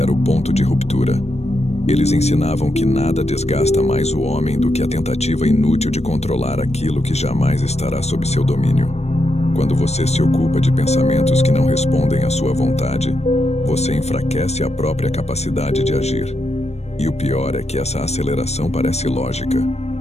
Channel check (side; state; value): right; late; 0.31 ms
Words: o ponto de ruptura. Eles ensinavam que nada desgasta mais o homem do que a tentativa inútil de controlar aquilo que jamais estará sob seu domínio. Quando você se ocupa de pensamentos que não respondem à sua vontade, você enfraquece a própria capacidade de agir. E o pior é que essa aceleração parece lógica.